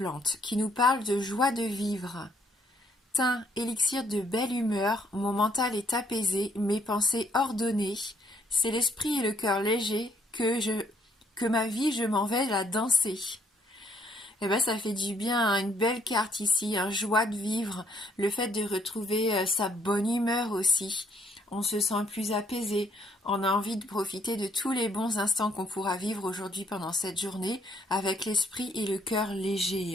qui nous parle de joie de vivre. Thym, élixir de belle humeur, mon mental est apaisé, mes pensées ordonnées. C'est l'esprit et le cœur léger que ma vie je m'en vais la danser. Eh ben ça fait du bien, hein, une belle carte ici, joie de vivre, le fait de retrouver sa bonne humeur aussi. On se sent plus apaisé, on a envie de profiter de tous les bons instants qu'on pourra vivre aujourd'hui pendant cette journée avec l'esprit et le cœur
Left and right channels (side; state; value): both; normal; correlation 0.67